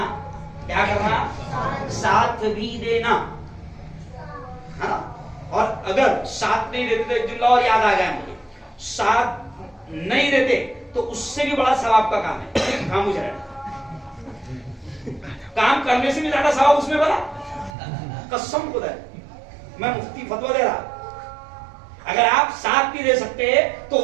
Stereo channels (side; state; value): left; drops out; at 17.8 s